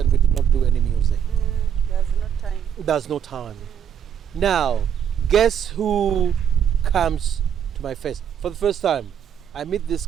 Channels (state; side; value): quieter; left; 8.7 dB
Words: we did not do any music. There's no time. Now, guess who comes to my face? For the first time, I meet this